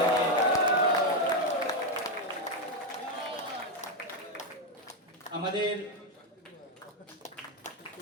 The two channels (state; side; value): normal; both; correlation 0.05